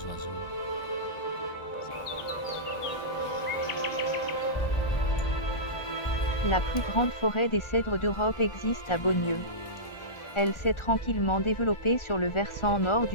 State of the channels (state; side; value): late; right; 1.4 ms